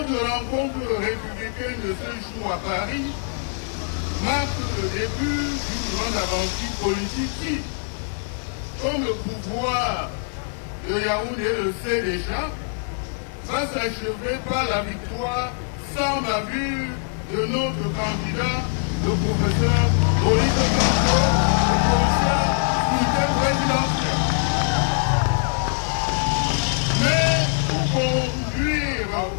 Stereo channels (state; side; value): silent; right; 63 dB below the other